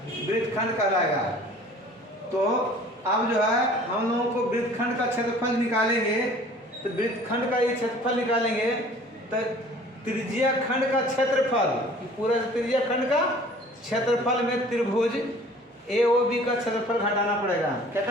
वृत्तखंड कहलाएगा। तो अब जो है हम लोगों को वृत्तखंड का क्षेत्रफल निकालेंगे। तो वृत्तखंड का ये क्षेत्रफल निकालेंगे तो त्रिज्या खंड का क्षेत्रफल, पूरा त्रिज्या खंड का क्षेत्रफल में त्रिभुज AOB का क्षेत्रफल घटाना पड़ेगा। क्या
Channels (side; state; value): both; normal; correlation 0.49